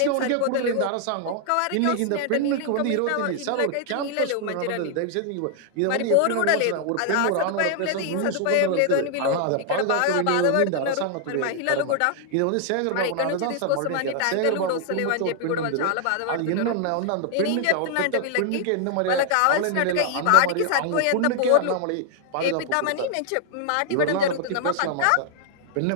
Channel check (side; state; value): both; different; correlation 0.00